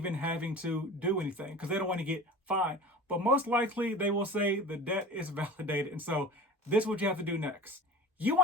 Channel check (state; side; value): normal; both; correlation 0.38